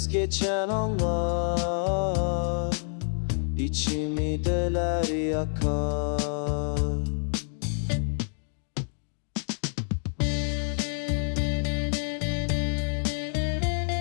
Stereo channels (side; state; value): right; silent; digital silence